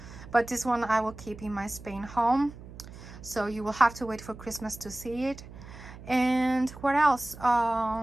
but this one I will keep in my Spain home, so you will have to wait for Christmas to see it. And what else?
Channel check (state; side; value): noise; right; hum, 16 dB below the sound